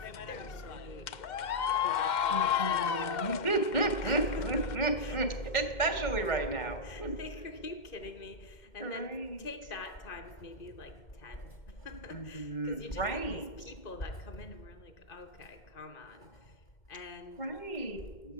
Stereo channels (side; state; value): right; late; 2.1 ms